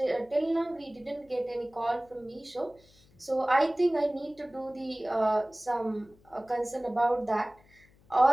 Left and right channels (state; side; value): noise; left; hum, 29 dB below the sound